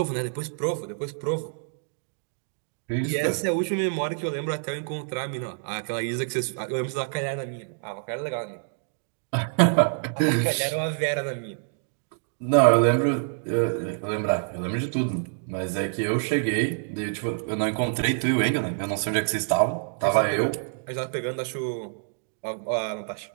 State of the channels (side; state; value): left; silent; digital silence